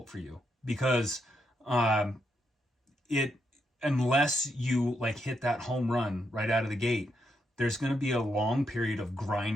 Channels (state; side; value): normal; both; correlation 0.80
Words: for you, because unless you like hit that home run right out of the gate, there's going to be a long period of